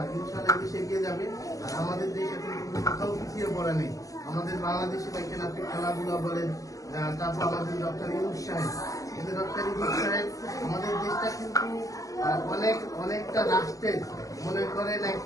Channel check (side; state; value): right; late; 0.16 ms